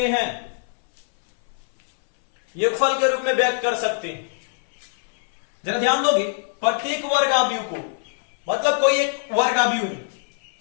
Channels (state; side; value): silent; right; 60 dB below the other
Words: हैं, योगफल के रूप में व्यक्त कर सकते हैं। जरा ध्यान दोगे, प्रत्येक वर्ग आव्यूह को, मतलब कोई एक वर्ग आव्यूह है,